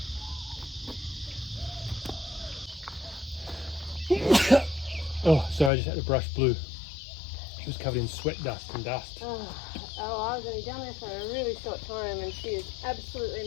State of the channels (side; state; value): right; drops out; at 5.7 s